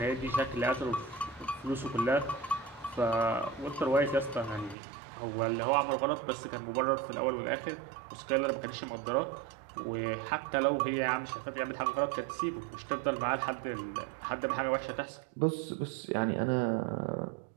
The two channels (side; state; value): left; drops out; at 4.8 s